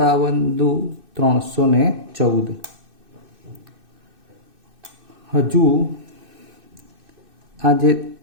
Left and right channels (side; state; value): left; late; 2.6 ms